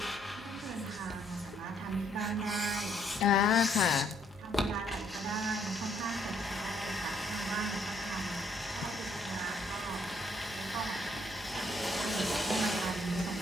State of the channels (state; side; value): normal; both; correlation 0.68